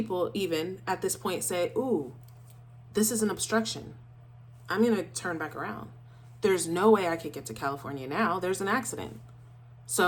even at this point say, ooh, this is an obstruction. I'm going to turn back around. There's no way I could get to California now. There's an accident.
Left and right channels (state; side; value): identical; both; correlation 1.00